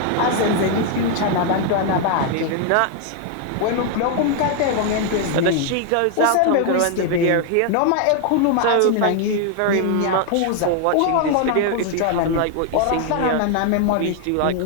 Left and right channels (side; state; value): both; different; correlation 0.00